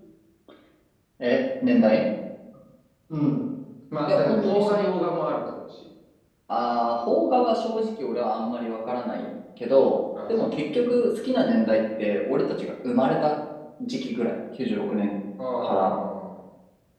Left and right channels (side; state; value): both; identical; correlation 1.00